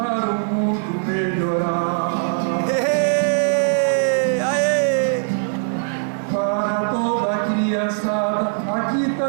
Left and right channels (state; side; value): silent; left; 58 dB below the other